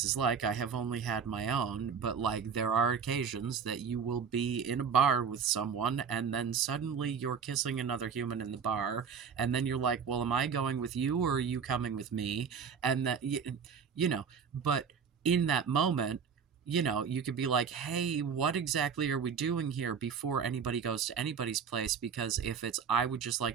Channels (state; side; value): quieter; left; 6.6 dB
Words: is like. I have only had my own, but, like, there are occasions that you will be in a bar with someone and then suddenly you're kissing another human in the bar, and then you're like, "Well, am I going with you or are you coming with me?" And that you know, but in that moment, you could be like, "Hey, what exactly are we doing here?" before anybody goes to anybody's place, because if it's, "I would just